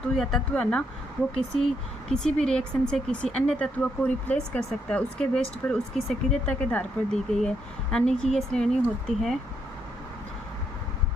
या तत्व है ना, वो किसी भी रिएक्शन से किसी अन्य तत्व को रिप्लेस कर सकता है, उसके बेस्ट पर उसकी सक्रियता के आधार पर दी गई है। यानी कि ये श्रेणी होती है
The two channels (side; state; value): both; normal; correlation 0.76